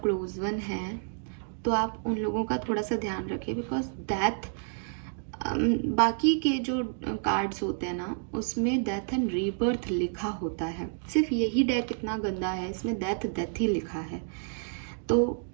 वन है तो आप उन लोगों का थोड़ा सा ध्यान रखें, बिकॉज डेथ, बाकी के जो कार्ड्स होते हैं ना उसमें डेथ एंड रीबर्थ लिखा होता है, सिर्फ यही डेक इतना गंदा है, इसमें डेथ ही लिखा है। तो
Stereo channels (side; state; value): left; silent; digital silence